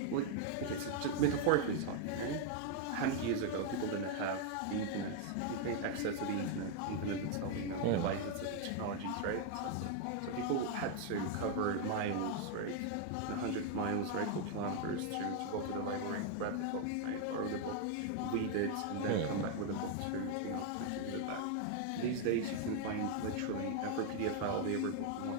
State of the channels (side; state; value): both; different; correlation 0.00